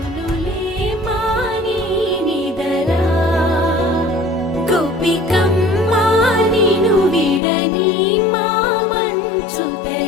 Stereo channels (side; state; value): right; drops out; at 7.4 s